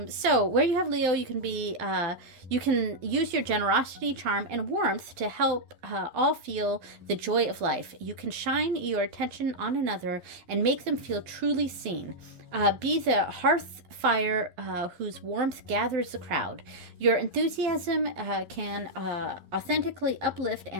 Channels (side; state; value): left; late; 12 ms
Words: So where you have Leo, you can use your generosity, charm, and warmth to help all feel the joy of life. You can shine your attention on another and make them feel truly seen. Be the hearth fire whose warmth gathers the crowd. Your enthusiasm can authentically uplift